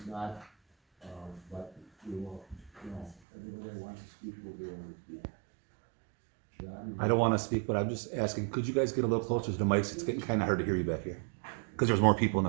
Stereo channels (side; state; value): left; drops out; at 3.2 s